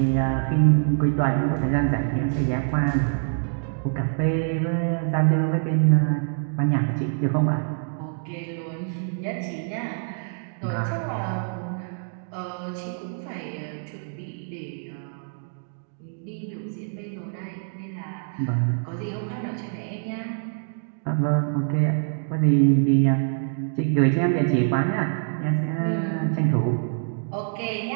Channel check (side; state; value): left; silent; digital silence